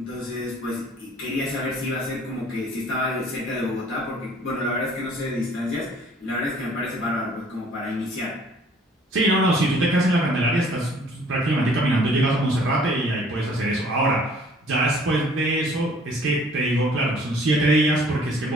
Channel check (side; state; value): both; normal; correlation 0.56